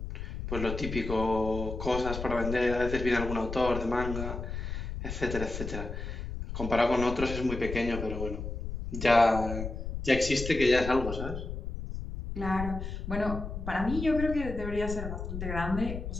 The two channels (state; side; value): noise; left; rumble, 6 dB below the sound